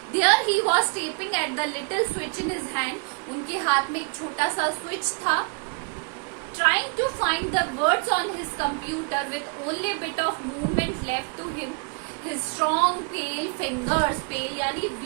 There he was tapping at the little switch in his hand। उनके हाथ में एक छोटा सा स्विच था। Trying to find the words on his computer with only bit of movement left to him। His strong pale fingers, pale यानी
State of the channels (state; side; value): quieter; left; 36.4 dB